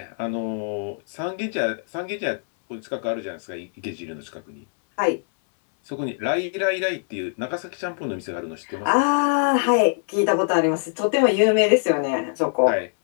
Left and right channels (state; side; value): silent; right; 63 dB below the other